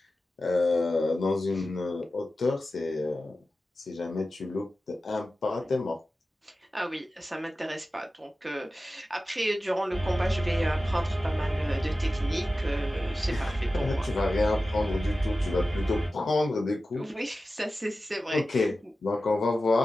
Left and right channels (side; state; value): both; normal; correlation 0.94